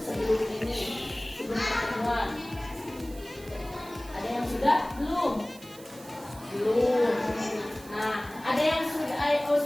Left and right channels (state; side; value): noise; right; hiss, 20 dB below the sound